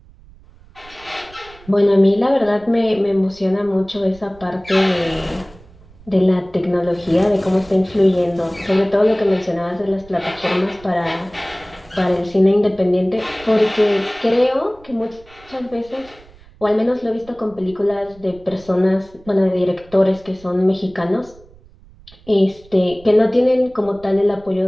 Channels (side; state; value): right; noise; rumble, 24 dB below the sound